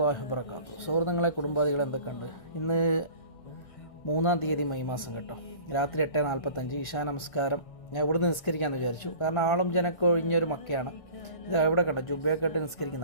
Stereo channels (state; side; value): late; right; 1.3 ms